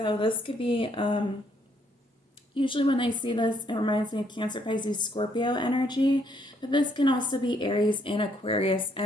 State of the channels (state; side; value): normal; both; correlation 0.70